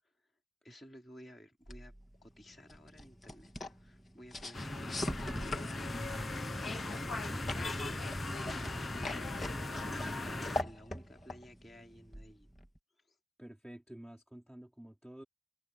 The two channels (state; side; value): normal; both; correlation 0.88